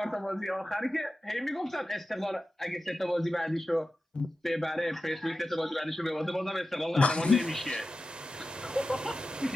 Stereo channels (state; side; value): normal; both; correlation 0.93